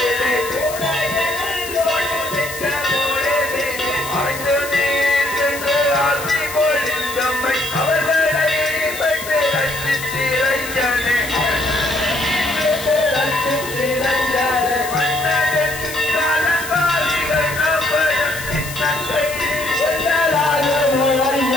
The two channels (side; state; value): left; noise; hiss, 10 dB below the sound